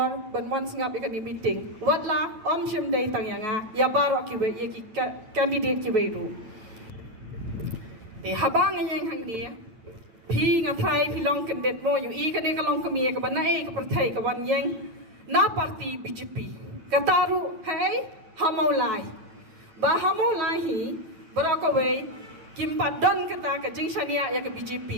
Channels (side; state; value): left; late; 9.3 ms